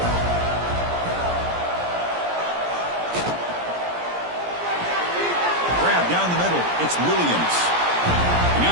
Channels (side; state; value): left; late; 17 ms